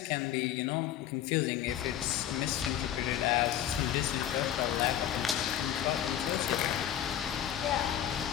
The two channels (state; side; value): quieter; right; 10.9 dB